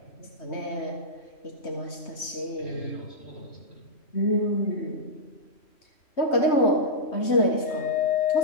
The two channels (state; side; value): late; right; 3.2 ms